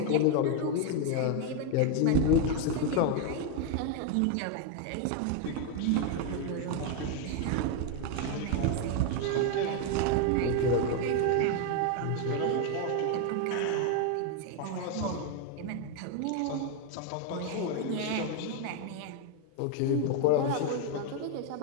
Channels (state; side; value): different; both; correlation 0.01